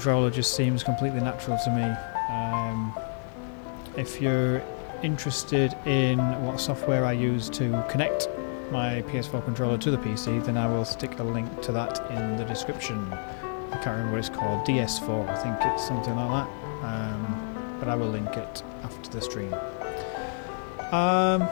just seems completely natural to me. If you're interested in what software I use to connect my PS4 controller to the PC, then I will stick a link to that in the description. I can't remember what it's called, DS4, I think it's something like that, but I will link it after the stream.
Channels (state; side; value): silent; right; 59 dB below the other